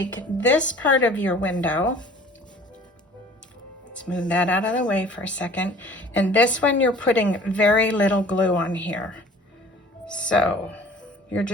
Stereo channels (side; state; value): both; normal; correlation 0.48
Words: this part of your window. Let's move that out of the way for a second. And this one you're putting very little glue on here. So you're